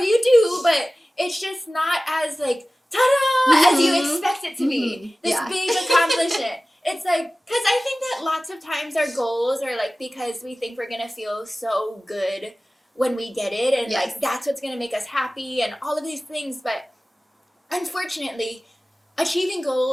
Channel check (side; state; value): both; normal; correlation 0.97